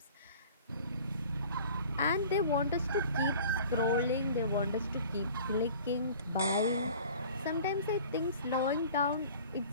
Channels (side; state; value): both; inverted; correlation -0.46